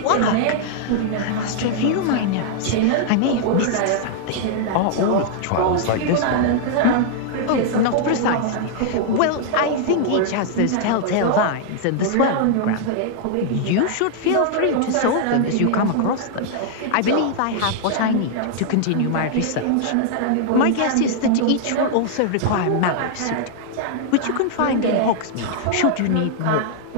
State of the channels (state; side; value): different; both; correlation -0.01